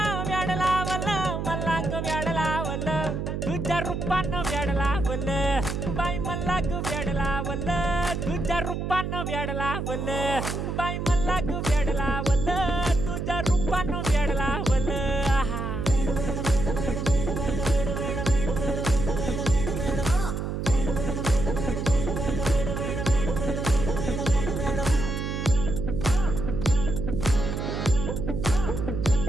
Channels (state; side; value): noise; right; hum, 3 dB below the sound